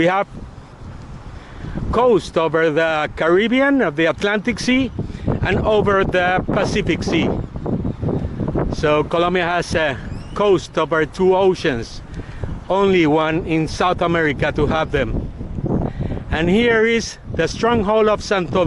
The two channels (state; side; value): identical; both; correlation 1.00